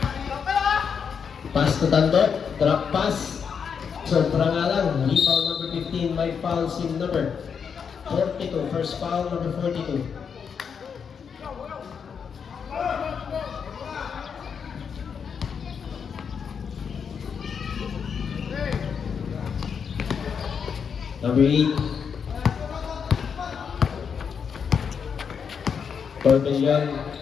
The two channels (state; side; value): quieter; right; 6.7 dB